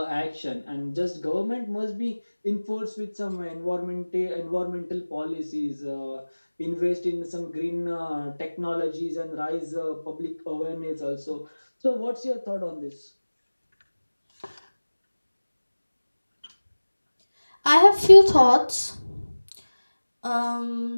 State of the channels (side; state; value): both; inverted; correlation -1.00